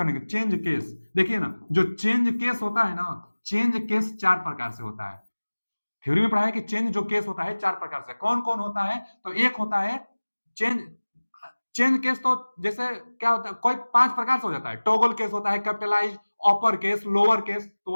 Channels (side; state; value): both; inverted; correlation -1.00